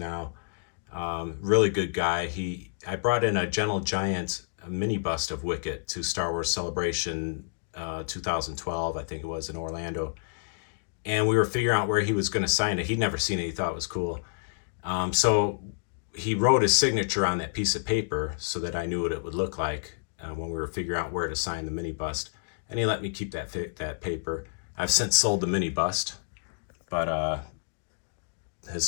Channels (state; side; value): silent; right; digital silence